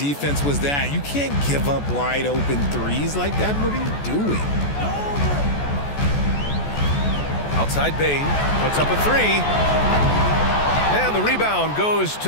was that? You can't give up wide open threes like that. What are you doing? Outside Bain, puts up a three. And the rebound goes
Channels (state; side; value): late; right; 14 ms